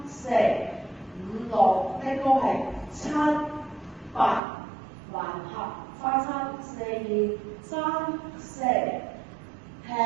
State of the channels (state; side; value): drops out; left; at 4.4 s